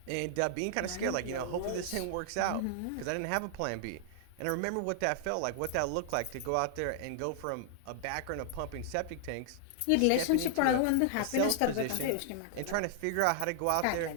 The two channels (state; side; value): different; both; correlation -0.01